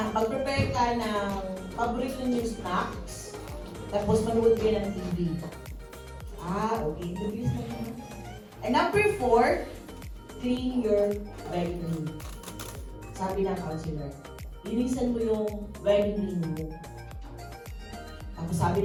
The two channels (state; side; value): identical; both; correlation 1.00